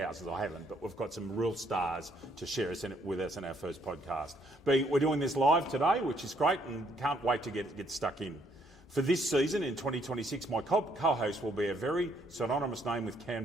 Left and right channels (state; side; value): normal; both; correlation 0.69